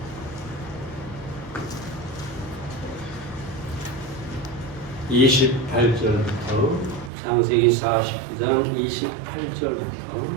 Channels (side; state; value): left; drops out; at 7.1 s